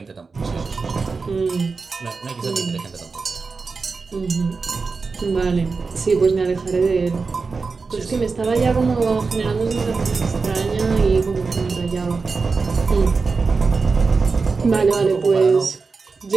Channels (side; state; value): left; quieter; 4.5 dB